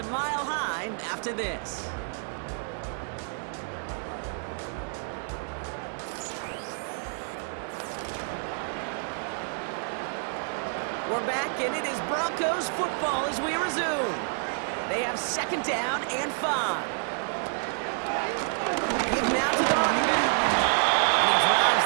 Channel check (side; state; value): left; silent; 59 dB below the other